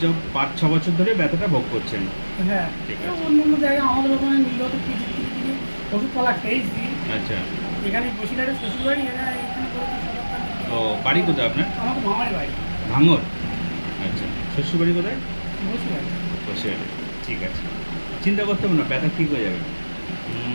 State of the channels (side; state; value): both; inverted; correlation -1.00